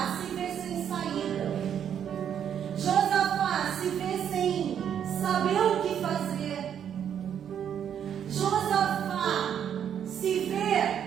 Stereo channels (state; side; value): quieter; left; 8.9 dB